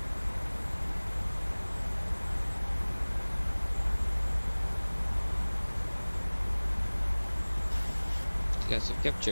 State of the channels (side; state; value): both; inverted; correlation -1.00